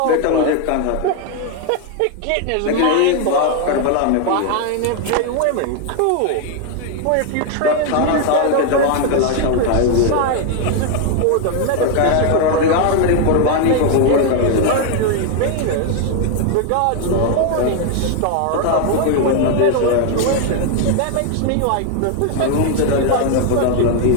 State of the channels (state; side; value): different; both; correlation 0.00